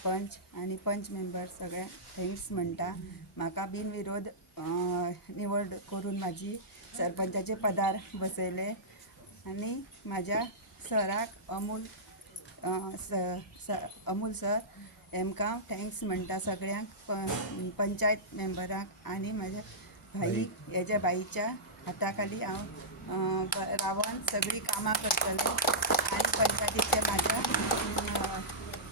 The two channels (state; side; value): normal; both; correlation -0.15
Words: आनी पंच मेंबर सगळे थँक्स म्हणटा। म्हाका बिनविरोध निवड करून म्हाजी सरपंचाचे पदार बसयले आनी म्हाज्या सराक अमूल सर हेमकां थँक्स म्हणटा सगळ्यांक पंचायत मेंबरांक आनी म्हाज्या भाईक हेज्या बाईच्या हाता खाली हांव रावन सगळीं कामां करतलें आनी पंचायतीचे